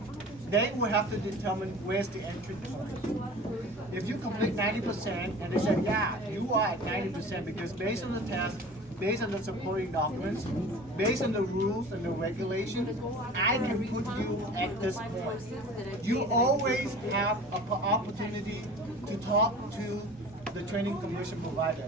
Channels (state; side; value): normal; both; correlation 0.41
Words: They will have to determine where's the entry point. If you complete 90% and they say, yeah, you are at 90% because based on the test, based on the supporting documents, based on the rules and the regulations, I can put you at this point. You always have an opportunity to talk to the training commission